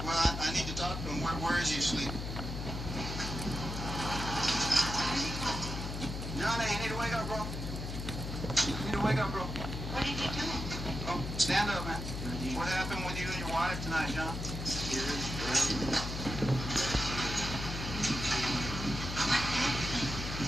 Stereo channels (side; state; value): left; noise; hum, 5 dB below the sound